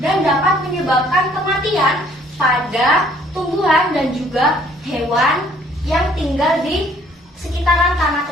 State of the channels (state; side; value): normal; both; correlation 0.60